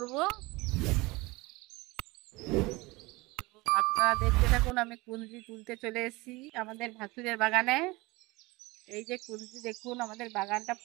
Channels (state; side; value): quieter; left; 23.0 dB